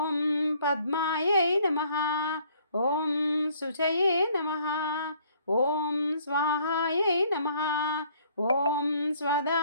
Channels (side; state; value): both; inverted; correlation -0.61